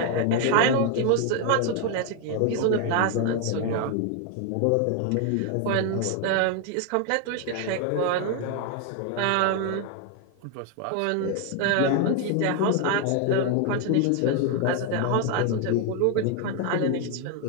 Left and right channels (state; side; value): different; both; correlation 0.01